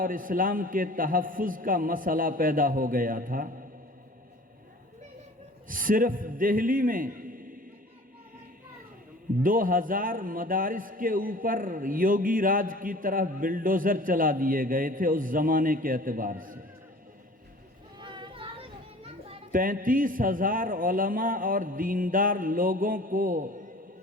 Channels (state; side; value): normal; both; correlation 0.45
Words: اسلام کے تحفظ کا مسئلہ پیدا ہو گیا تھا۔ صرف دہلی میں 2000 مدارس کے اوپر یوگی راج کی طرف بلڈوزر چلا دیے گئے تھے اس زمانے کے اعتبار سے۔ 35,000 علماء اور دیندار لوگوں کو